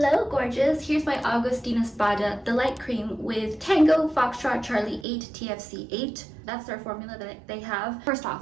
gorgeous, here's my Augustinus Bada, the light cream with Tango Foxtrot Charlie 8 TFC 8. That's their formula that they have. First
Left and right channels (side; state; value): left; drops out; at 5.1 s